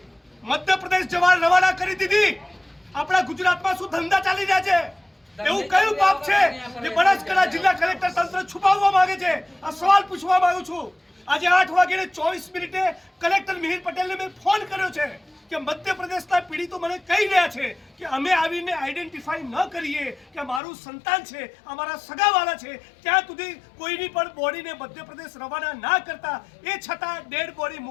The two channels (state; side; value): drops out; right; at 20.6 s